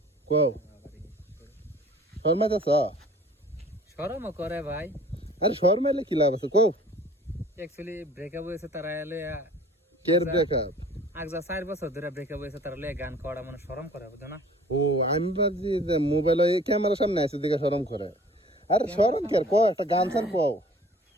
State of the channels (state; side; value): normal; both; correlation 0.50